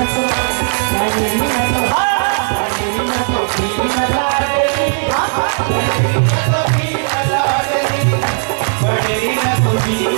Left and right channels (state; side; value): silent; left; digital silence